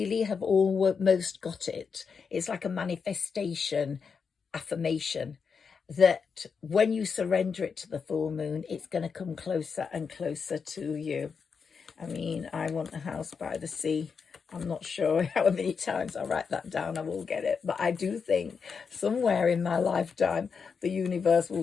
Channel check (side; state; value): right; quieter; 5.8 dB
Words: have almost got it. It's like a manifestation, affirmation, that when you surrender it to the full moon, it's going to come closer and closer to you. I mean, I want a house by the sea. I'm not sure how many times I write that down, I will get it. But I do think somewhere in my lifetime, the universe